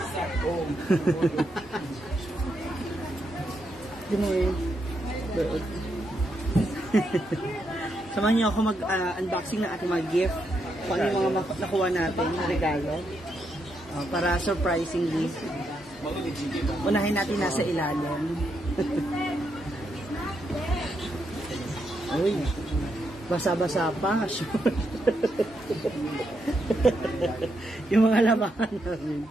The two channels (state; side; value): normal; both; correlation 0.81